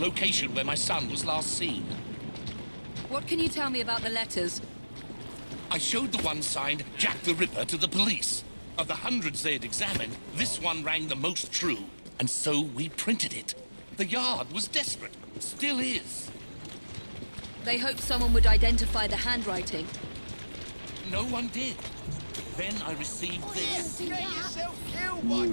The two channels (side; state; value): both; inverted; correlation -1.00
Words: where my son was last seen. What can you tell me about the letters? I showed the one signed Jack the Ripper to the police. Of the hundreds they had examined, this one rang the most true, and so we printed it. The Yard was desperate. Still is. They hoped someone would identify the handwriting. No one did. Then I received this. You